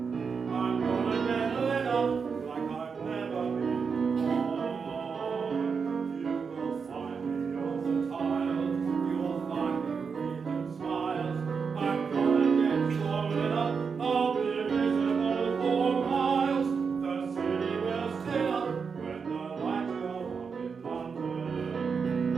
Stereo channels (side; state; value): left; quieter; 5.7 dB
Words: I'm gonna get lit up like I've never been before. You will find me on the tiles, you'll find me breathing smiles. I'm gonna get so lit up, I'll be visible for miles. The city will sit up when the lights go up in London.